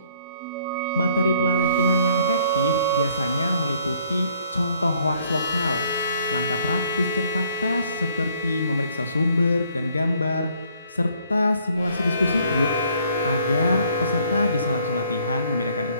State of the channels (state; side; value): inverted; both; correlation -0.63